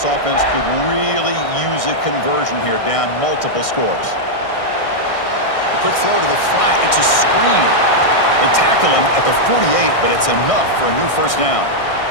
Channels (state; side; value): late; right; 1.6 ms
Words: offense could really use a conversion here, down multiple scores. A quick throw to the flat. It's a screen. They tackle him at the 48, but it's enough for a new first down.